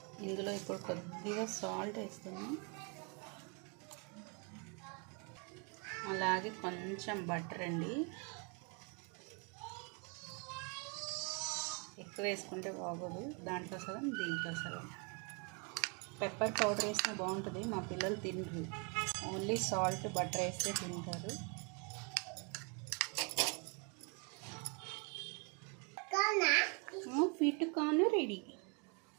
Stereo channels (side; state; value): left; quieter; 34.9 dB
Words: ఇందులో ఇప్పుడు కొద్దిగా సాల్ట్ వేస్తున్నాం, అలాగే కొంచెం బటర్ అండి. ఎక్కువ వేసుకుంటే బాగోదు, దాంట్లో సగం దీంట్లో సగం. పెప్పర్ పౌడర్ వేసినా బాగుంటుంది, మా పిల్లలు తినరు. ఓన్లీ సాల్ట్ బటర్ వేస్తే తింటారు. ఫిట్ కార్న్ రెడీ.